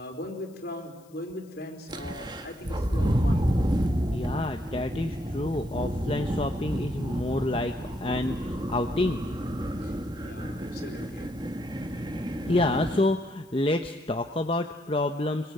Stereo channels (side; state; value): left; noise; hiss, 29 dB below the sound